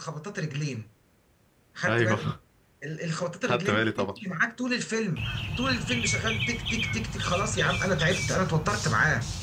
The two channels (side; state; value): both; identical; correlation 1.00